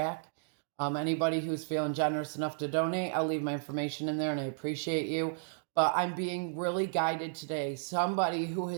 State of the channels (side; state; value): left; silent; digital silence